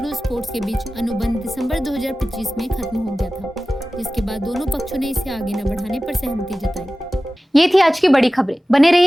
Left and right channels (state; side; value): normal; both; correlation 0.96